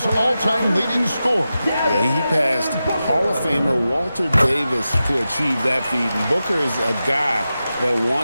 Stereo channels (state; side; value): inverted; both; correlation -0.92